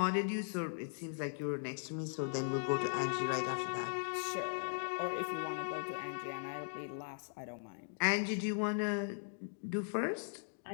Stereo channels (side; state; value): right; silent; digital silence